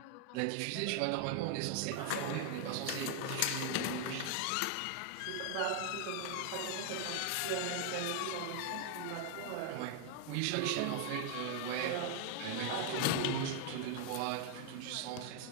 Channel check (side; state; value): both; different; correlation 0.00